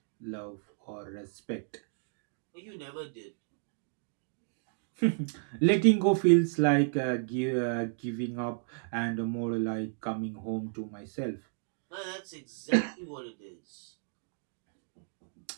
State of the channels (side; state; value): left; silent; digital silence